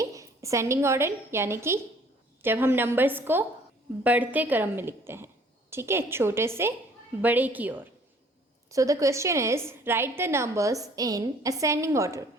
ascending order यानी कि जब हम numbers को बढ़ते क्रम में लिखते हैं, ठीक है, छोटे से बड़े की ओर. So the question is write the numbers in ascending order.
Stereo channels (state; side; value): normal; both; correlation 0.57